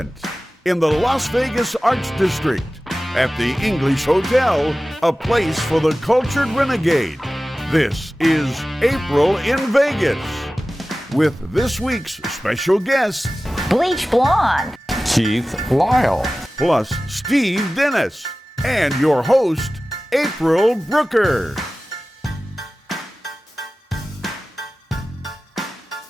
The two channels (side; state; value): both; normal; correlation 0.96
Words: in the Las Vegas Arts District at the English Hotel, a place for the cultured renegade. This is April in Vegas with this week's special guest, Bleach Blonde, Keith Lyle, plus Steve Dennis, and your host, April Brucker.